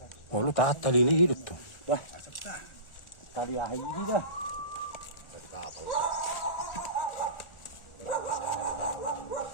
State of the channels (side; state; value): right; late; 1.4 ms